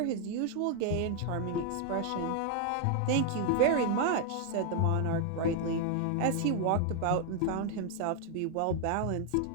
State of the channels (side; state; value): both; different; correlation 0.00